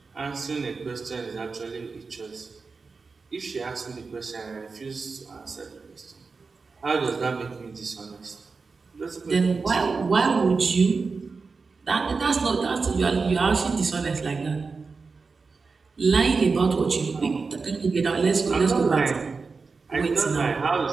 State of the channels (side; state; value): left; quieter; 4.5 dB